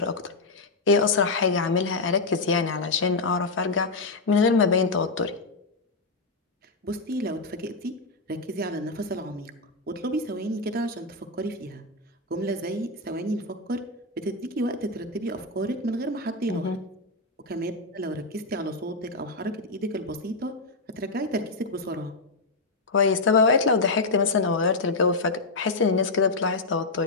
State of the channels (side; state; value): right; quieter; 3.3 dB